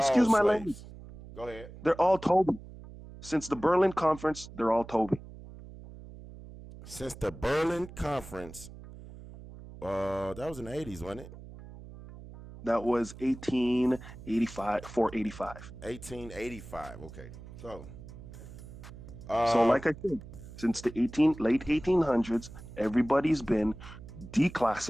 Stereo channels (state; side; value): noise; right; hum, 15 dB below the sound